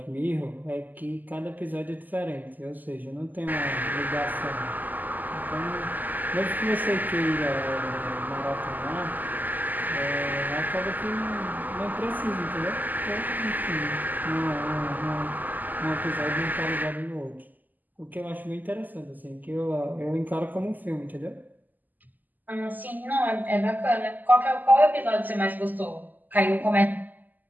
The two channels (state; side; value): late; left; 0.084 ms